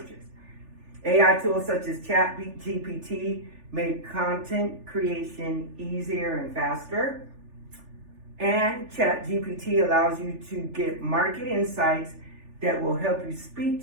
AI tools such as ChatGPT make content creation easier and faster. And ChatGPT allows you to get market insights that will help you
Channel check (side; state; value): left; late; 3.4 ms